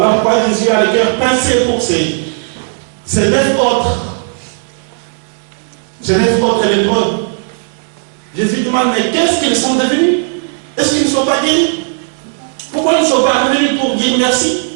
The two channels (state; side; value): silent; left; 70 dB below the other